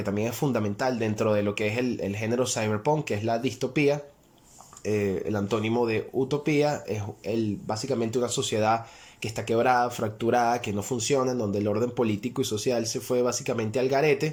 también es fundamental dentro de lo que es el género cyberpunk, que es la distopía. El antónimo de utopía es básicamente una sociedad que está quebrada, fracturada, que no funciona, en donde el orden político y social se fue básicamente al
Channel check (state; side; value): identical; both; correlation 1.00